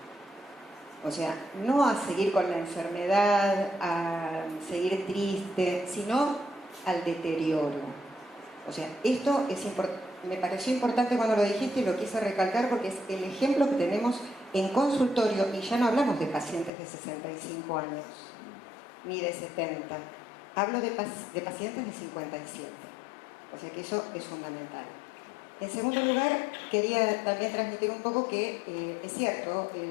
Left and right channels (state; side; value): drops out; right; at 16.7 s